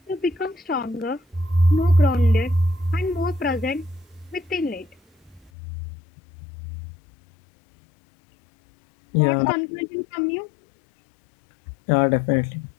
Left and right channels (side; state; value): right; drops out; at 5.5 s